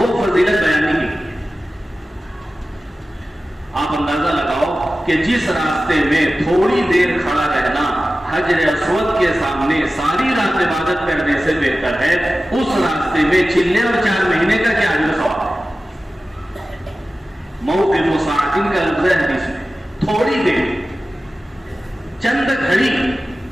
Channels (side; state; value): both; normal; correlation 0.95